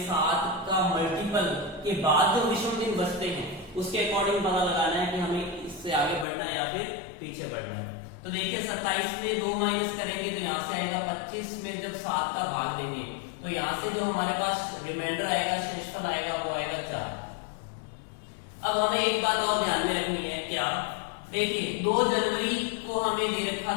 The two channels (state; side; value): drops out; right; at 6.2 s